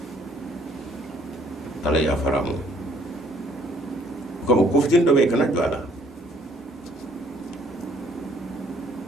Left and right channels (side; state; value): both; normal; correlation 0.62